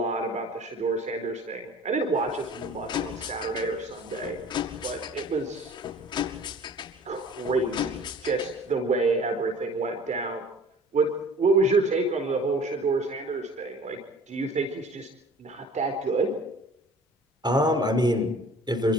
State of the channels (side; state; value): both; normal; correlation 0.47